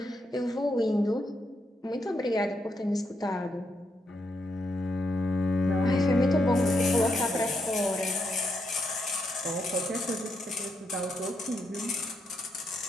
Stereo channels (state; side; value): normal; both; correlation 0.80